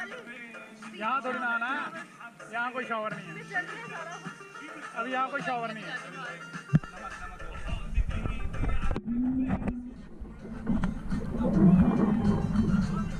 यहाँ थोड़ी ना आना है, यहाँ कोई शॉवर नहीं है। अभी यहाँ कोई शॉवर नहीं है।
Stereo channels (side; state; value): both; identical; correlation 1.00